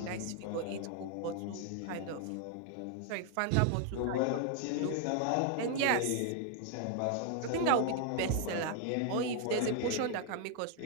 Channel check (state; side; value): different; both; correlation 0.00